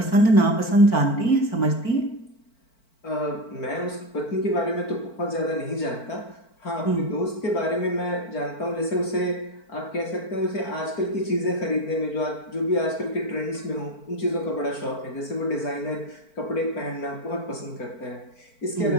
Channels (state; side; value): late; right; 4.5 ms